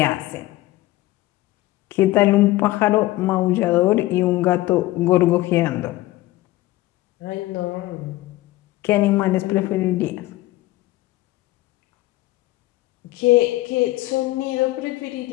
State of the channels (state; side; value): quieter; right; 17.6 dB